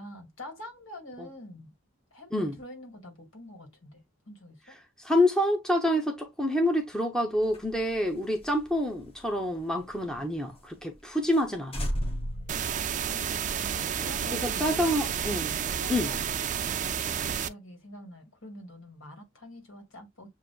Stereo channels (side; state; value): both; normal; correlation 0.61